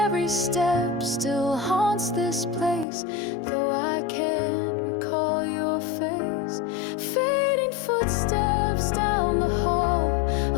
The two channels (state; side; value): drops out; right; at 2.9 s